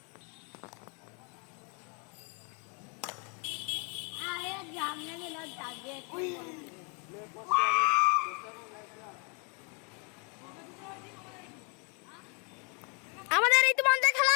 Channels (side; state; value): right; quieter; 35.7 dB